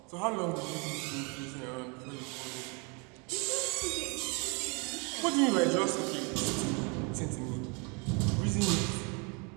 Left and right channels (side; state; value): left; quieter; 33.0 dB